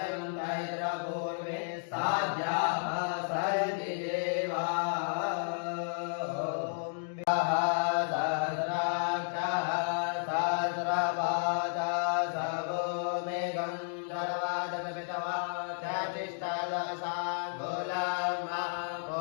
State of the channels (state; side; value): silent; right; digital silence